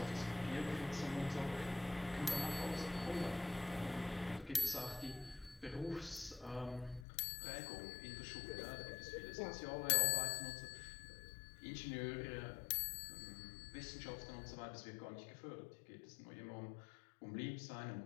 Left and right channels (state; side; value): drops out; right; at 7.1 s